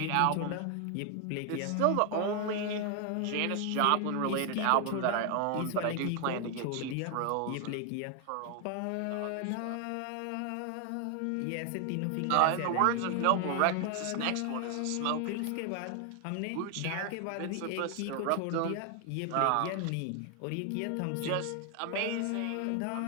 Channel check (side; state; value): both; different; correlation 0.00